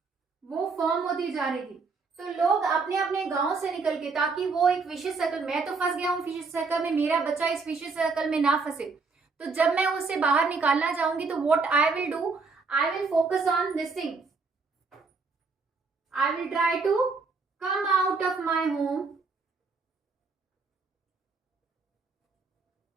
वो फॉर्म होती जा रही थी। तो लोग अपने अपने गांव से निकल के, ताकि वो एक विशेष सर्कल, मैं तो फंस गया हूँ विशेष सर्कल में, मेरा बच्चा इस विशेष सर्कल में ना फंसे, तो जब मैं उसे बाहर निकालना चाहूंगी तो what I will do, I will focus on this thing, I will try to come out of my home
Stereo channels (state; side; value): quieter; left; 4.4 dB